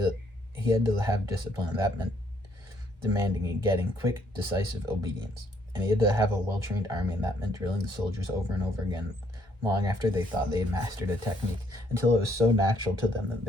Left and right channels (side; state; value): both; normal; correlation 0.67